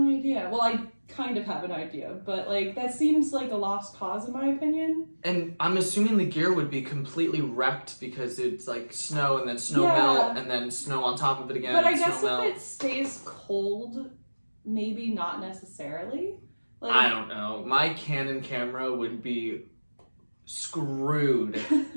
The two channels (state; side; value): inverted; both; correlation -1.00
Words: idea. Well, I kind of have an idea, but, like, that seems like a lost cause in my opinion. And I'm assuming the gear would be completely wrecked because it's like snow and then snow melt and then snow on top of it again. But I and guess snow if melt. it stays cold, maybe not necessarily. Like, I don't know. My Canon camera would be screwed